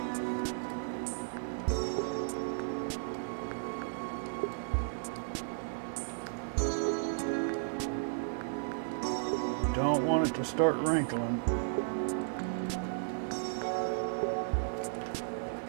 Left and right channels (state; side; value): silent; left; digital silence